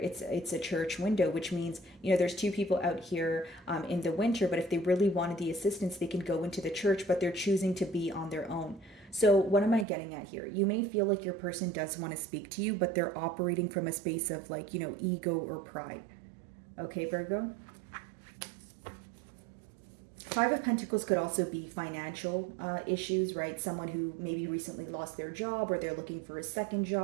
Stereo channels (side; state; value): left; drops out; at 9.9 s